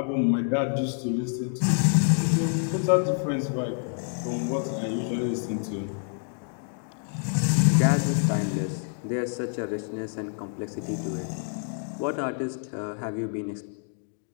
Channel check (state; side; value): silent; right; 60 dB below the other